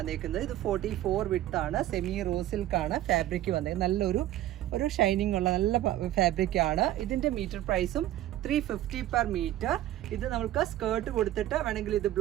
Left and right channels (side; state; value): left; quieter; 13.7 dB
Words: ഇത് 44 വിഡ്ത്ത് ആണ്. സെമി റോസിൽക്കാണ് ഫാബ്രിക് വന്നേക്കുന്നത്. നല്ലൊരു ഷൈനിങ് ഉള്ള നല്ല ഫാബ്രിക് ആണ്. ഇതിൻ്റെ മീറ്റർ പ്രൈസും 350 പെർ മീറ്റർ. ഇത് നമുക്ക് സ്കേർട്ട് കൊടുത്തിട്ട് വേണമെങ്കിൽ ഇത്